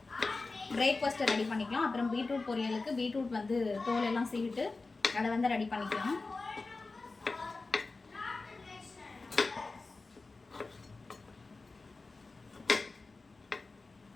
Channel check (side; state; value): right; quieter; 3.7 dB